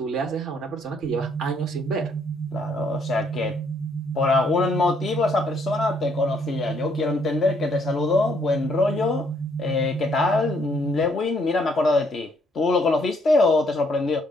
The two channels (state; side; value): normal; both; correlation 0.69